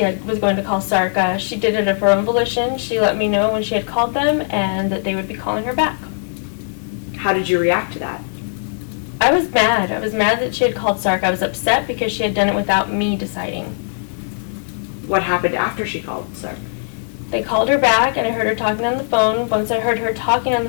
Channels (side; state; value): right; silent; digital silence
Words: to call SARC. She did it of her own volition. She let me know when she had called them and that they would be calling her back. How did you react to that? I was mad. I was mad that she had called SARC. I was upset because she had done it without me deciding. What happened after she called SARC? They called her back and I heard her talking on the phone. Once I heard her talking on